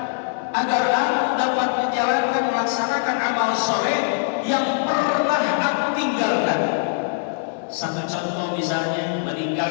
agar aku dapat menjalankan, melaksanakan amal soleh yang pernah aku tinggalkan. Satu contoh misalnya,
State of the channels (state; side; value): silent; right; 62 dB below the other